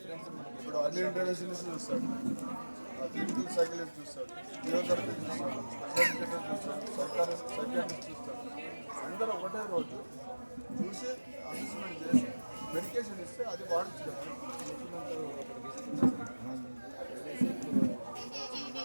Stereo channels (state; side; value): inverted; both; correlation -1.00